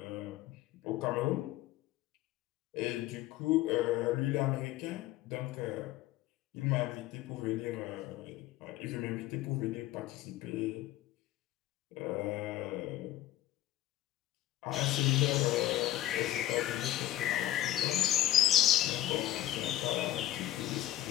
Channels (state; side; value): quieter; right; 13.7 dB